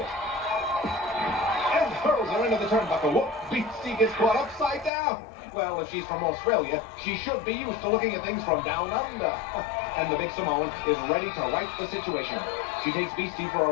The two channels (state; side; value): drops out; right; at 4.9 s